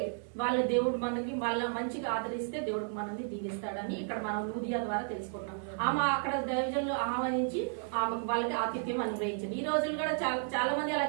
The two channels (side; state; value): left; silent; digital silence